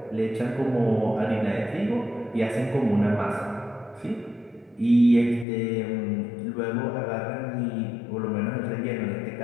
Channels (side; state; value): right; drops out; at 5.5 s